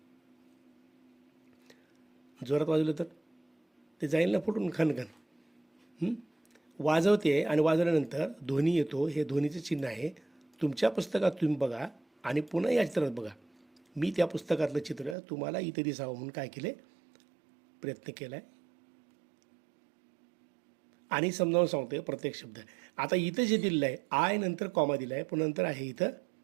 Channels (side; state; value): left; drops out; at 15.2 s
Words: जोरात वाजवलं तर ते जाईल ना फुटून खनखन. वाजवते आणि वाजवल्यानंतर ध्वनी येतो. हे ध्वनीचं चिन्ह आहे. तुमच्या पुस्तकात तुम्ही बघा आणि पुन्हा या चित्रात बघा. मी त्या पुस्तकातलं चित्र तुम्हाला इथे दिसावं म्हणून काय केले, प्रयत्न केला आहे आणि समजावून सांगतोय प्रत्येक शब्द. आता इथं जे दिलेलं आहे, आय नंतर कॉमा दिला आहे, पण नंतर आहे इथं